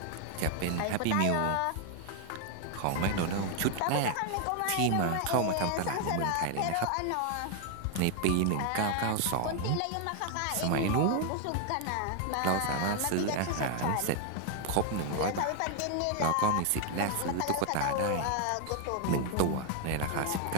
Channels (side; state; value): both; different; correlation 0.01